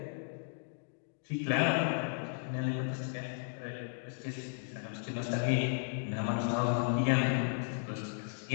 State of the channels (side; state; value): right; silent; digital silence